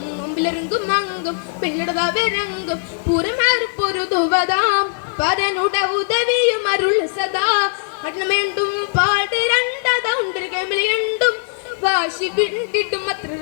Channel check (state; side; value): silent; right; digital silence